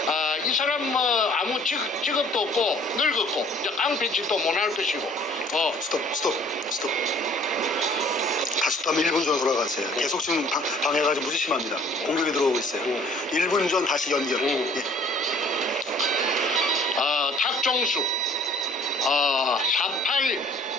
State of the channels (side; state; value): both; normal; correlation 0.55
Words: 이 사람 아무 직업도 없고 늙었고 이제 깡패짓도 못할 것이고 스톱. 다시 또 한번 1분 전으로 돌아가세요. 계속 지금 방해가 좀 무지 심합니다. 공격이 들어오고 있어요. 1분 전 다시 연결. 예. 탁종수